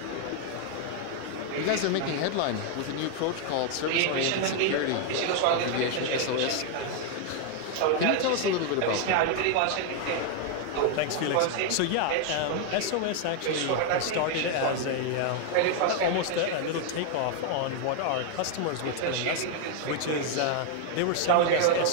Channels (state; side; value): different; both; correlation 0.00